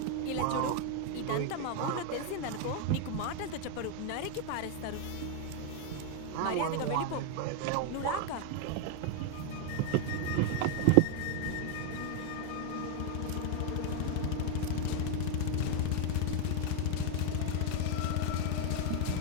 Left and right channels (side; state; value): both; different; correlation 0.01